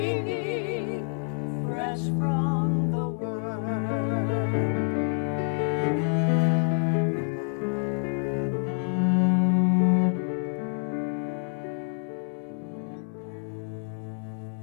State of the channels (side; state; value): right; silent; 60 dB below the other